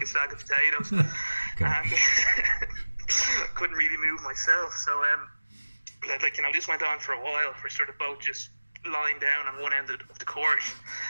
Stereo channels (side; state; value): both; inverted; correlation -1.00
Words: a sack of potatoes. Okay. And couldn't really move myself. So this went on for a while. We're sort of both just lying down on one end of the court,